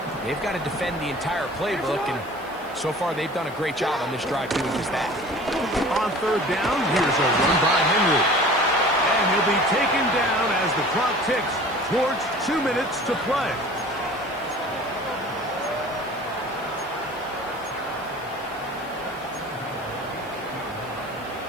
They've got to defend the entire playbook, and so far they've done a great job on this drive doing just that. On 3rd down, here's a run by Henry. And he'll be taken down as the clock ticks towards 2 minutes to play.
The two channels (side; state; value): right; noise; hiss, 25 dB below the sound